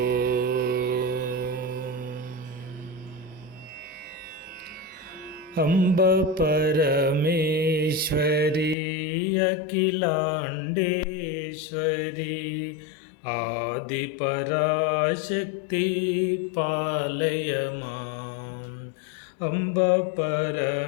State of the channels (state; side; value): drops out; right; at 8.8 s